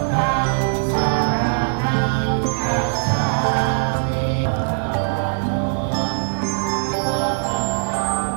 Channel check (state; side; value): silent; left; digital silence